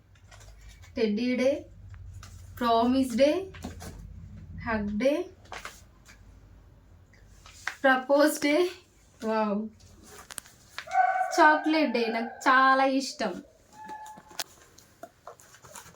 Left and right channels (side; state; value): both; identical; correlation 1.00